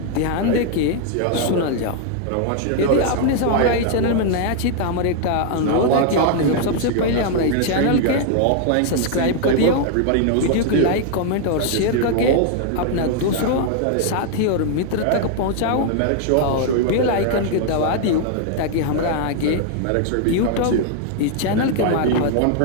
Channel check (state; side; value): different; both; correlation 0.00